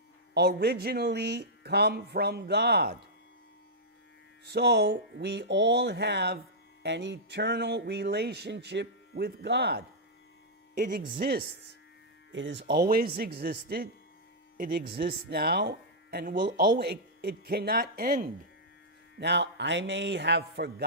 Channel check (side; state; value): both; normal; correlation -0.09